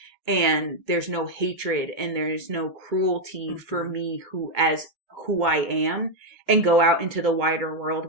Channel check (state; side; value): late; left; 2.2 ms